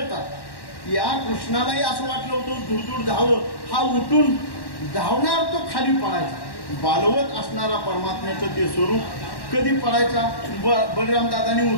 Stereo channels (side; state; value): right; late; 1.1 ms